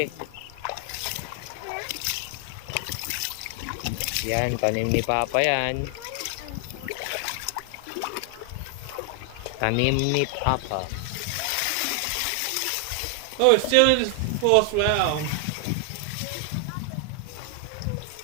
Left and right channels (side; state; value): both; different; correlation 0.00